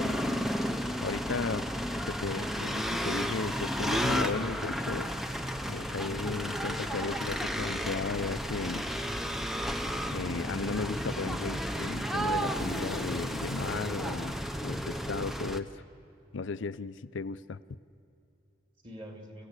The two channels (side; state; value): both; normal; correlation 0.61